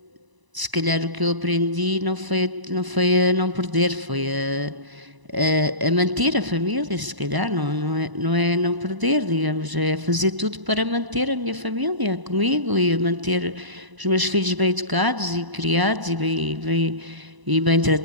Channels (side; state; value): left; late; 1.0 ms